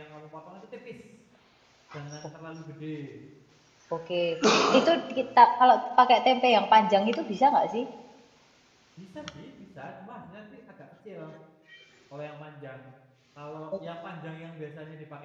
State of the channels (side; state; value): both; identical; correlation 1.00